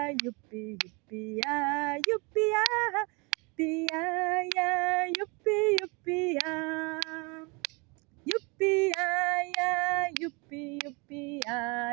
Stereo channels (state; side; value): quieter; left; 29.7 dB